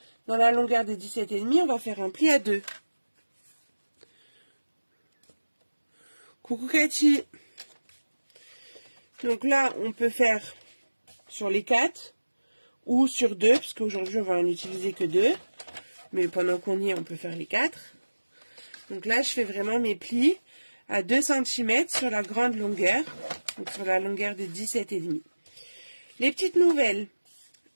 Dans la longueur des 17,5, on va faire un pli à 2. Coucou Cathy. Donc là, on peut faire sur les 4 ou sur 2, parce qu'aujourd'hui, on va en utiliser que 2. Mais pendant qu'on y est, on peut faire les 4. Donc là, je fais vraiment mes plis à 2 cm sur la grande longueur, donc sur la longueur de 17,5. Les petites nouvelles,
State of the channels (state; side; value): inverted; both; correlation -1.00